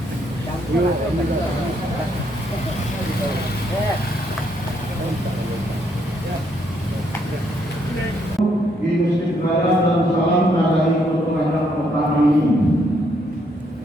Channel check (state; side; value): normal; both; correlation 0.73